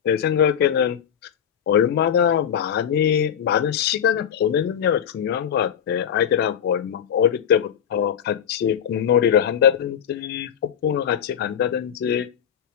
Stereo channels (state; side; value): quieter; right; 8.8 dB